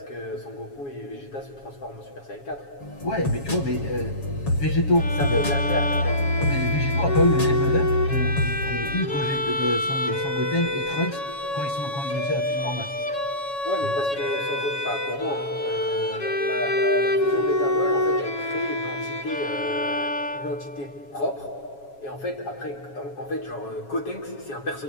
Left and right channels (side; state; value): right; late; 7.2 ms